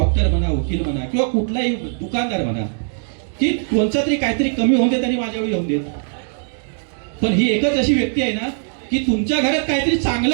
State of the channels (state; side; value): silent; left; digital silence